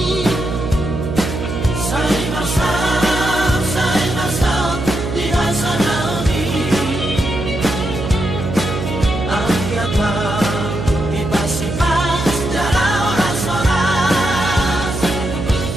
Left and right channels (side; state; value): right; noise; hum, 4 dB below the sound